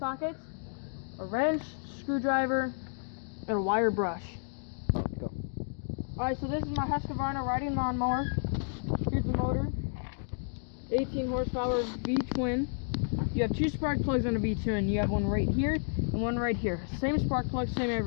a wrench, screwdriver, and a wire brush. Go. Alright, so this is my Huskavarna riding lawnmower. Here's the motor. 18 horsepower V-twin. You have 2 spark plugs on a V-twin. You have one right here and one right here. Same spark plug, same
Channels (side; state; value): right; silent; digital silence